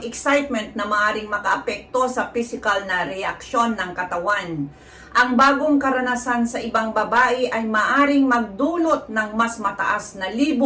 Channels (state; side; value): identical; both; correlation 1.00